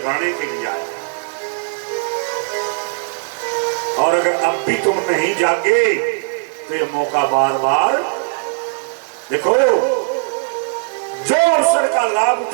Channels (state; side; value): silent; left; digital silence